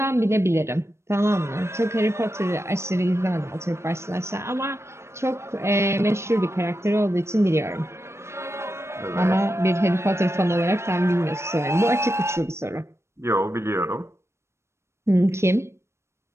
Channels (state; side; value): late; left; 0.13 ms